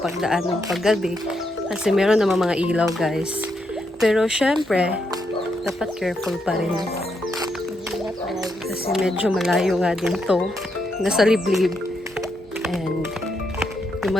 ng paggabi. Kasi meron naman mga ilaw, guys. Pero syempre, dapat careful pa rin. Kasi medyo malayo nga din to. Nasa liblib. And yung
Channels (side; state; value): both; normal; correlation 0.80